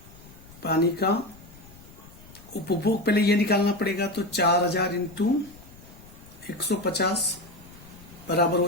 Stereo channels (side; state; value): left; noise; rumble, 21 dB below the sound